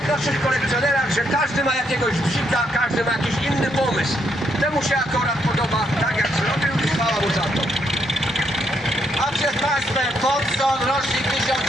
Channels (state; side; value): normal; both; correlation 0.75